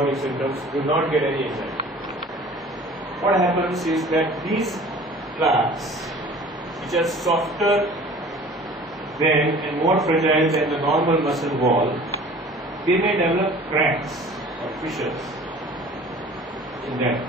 symptoms, do not get any anxiety. What happens is that these plaques, which are softer than and more fragile than the normal muscle wall, they may develop cracks or fissures in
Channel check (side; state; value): both; normal; correlation 0.46